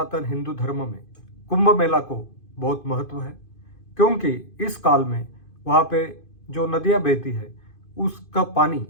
हिंदू धर्म में कुंभ मेला को बहुत महत्व है, क्योंकि इस काल में वहाँ पे जो नदियाँ बहती है उसका पानी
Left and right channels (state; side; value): late; right; 2.5 ms